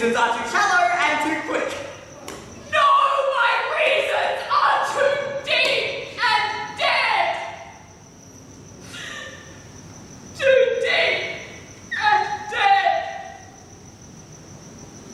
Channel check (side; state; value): both; identical; correlation 1.00